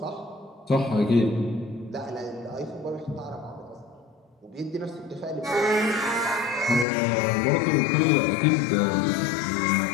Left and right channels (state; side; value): drops out; right; at 6.9 s